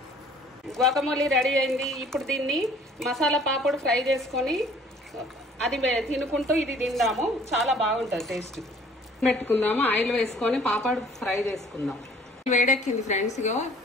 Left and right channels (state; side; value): normal; both; correlation 0.55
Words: గ్వాకమోలీ రెడీ అయింది. ఇప్పుడు దీన్ని మసాలా పాపడు ఫ్రై చేసుకొని అది తినుకుంటూ ఇది తిందాము. చాలా బాగుంటుంది టేస్ట్. పెట్టుకుందాము, ఆయిల్ వేసుకొని పాపడు ఫ్రై చేసుకుందాం. వేడెక్కింది ఫ్రెండ్స్, ఇగో